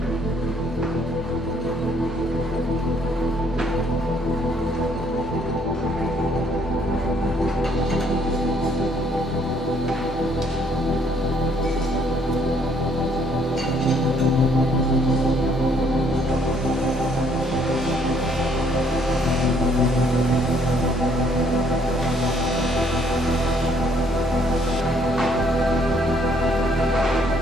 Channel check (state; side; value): normal; both; correlation 0.65